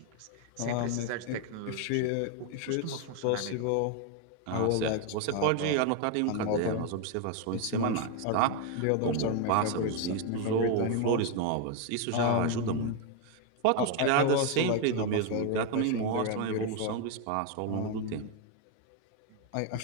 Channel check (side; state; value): both; different; correlation 0.01